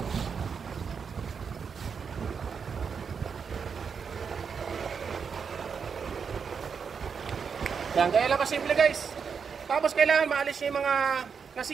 Yan, kaya lang kasimple guys. Tapos kailangan maalis yung mga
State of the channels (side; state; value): left; quieter; 6.2 dB